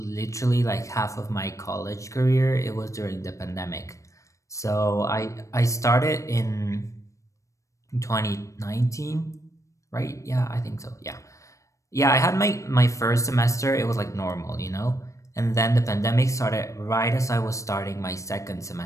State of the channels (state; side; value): late; right; 0.15 ms